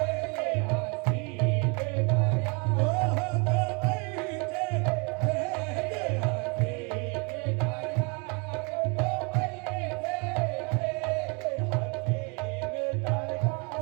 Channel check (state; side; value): quieter; left; 32.7 dB